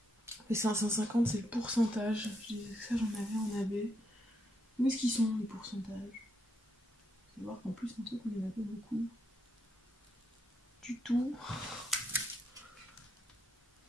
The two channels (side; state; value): both; normal; correlation 0.79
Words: Les 550, c'est le pourcentage. Je disais que ça, j'en avais en AB. Où est-ce qu'ils sont, les pourcentages? Faut voir qu'en plus, un truc, on en a pas beaucoup. Du tout.